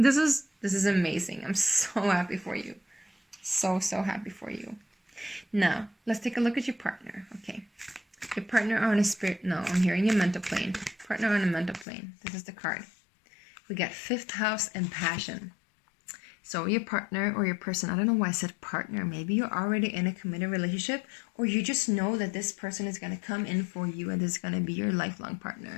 is amazing. I'm so happy for you. So happy for you. Now, let's take a look at your partner. Okay. Your partner on a spirit... No, I'm hearing your mental plane. Partner on a mental plane. This is the card. We got 5th house and passion. So your partner or your person, I don't know why I said partner. Maybe you're already in a committed relationship, or you just know that this person is going to come in for you and this is going to be your lifelong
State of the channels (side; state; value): right; drops out; at 11.9 s